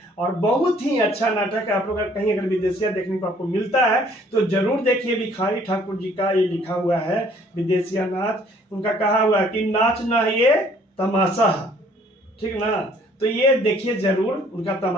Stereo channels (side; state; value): both; normal; correlation 0.59